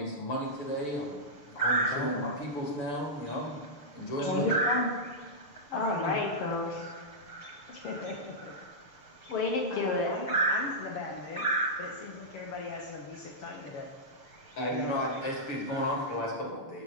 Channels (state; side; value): late; right; 6.8 ms